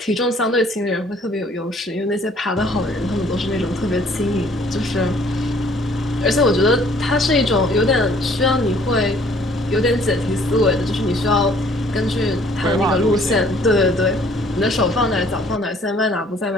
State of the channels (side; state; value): both; normal; correlation 0.59